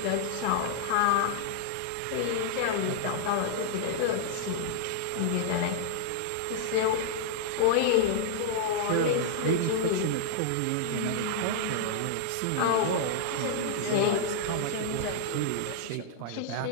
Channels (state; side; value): different; both; correlation -0.01